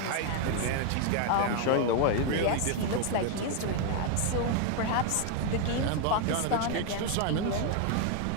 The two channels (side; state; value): both; different; correlation 0.01